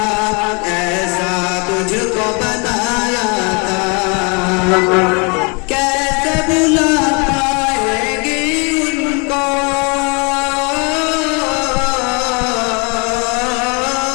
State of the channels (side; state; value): right; quieter; 32.3 dB